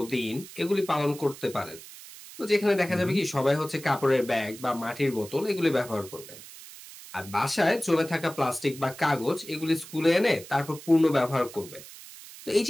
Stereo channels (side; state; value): right; noise; hiss, 16 dB below the sound